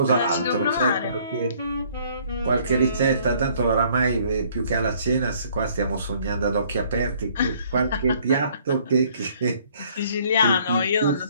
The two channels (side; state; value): both; inverted; correlation -0.61